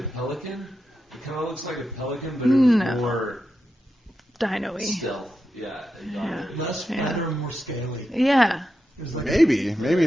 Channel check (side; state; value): both; normal; correlation 0.88